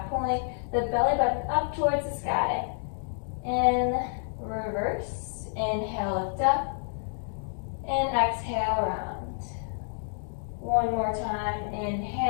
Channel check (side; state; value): right; silent; digital silence